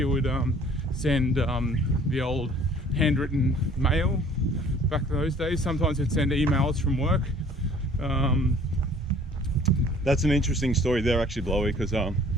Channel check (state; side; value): normal; both; correlation 0.53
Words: would send the old handwritten mail back in those days. Sometimes he'd send emails from work. That's an interesting story there, actually, Blowy, because